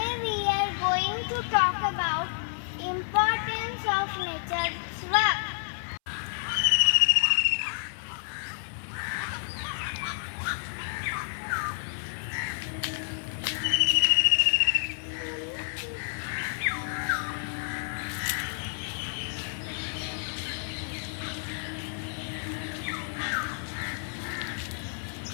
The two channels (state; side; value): silent; right; 58 dB below the other